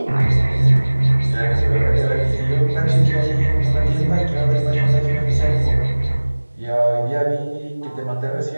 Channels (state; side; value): inverted; both; correlation -1.00